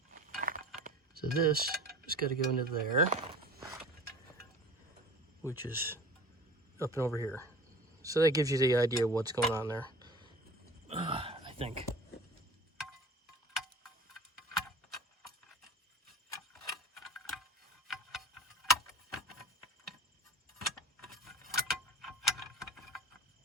So this has got to go into there, which is up and over here. So that gives you the idea of what's going on there, I think.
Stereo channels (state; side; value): normal; both; correlation 0.39